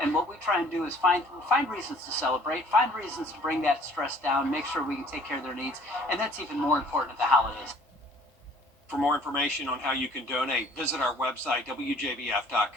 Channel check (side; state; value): both; normal; correlation 0.55